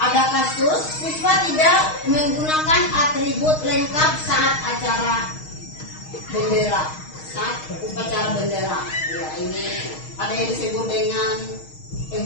kasus siswa tidak menggunakan atribut lengkap saat acara bendera, saat upacara bendera. Ya, ini ada yang disebut dengan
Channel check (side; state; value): right; late; 6.4 ms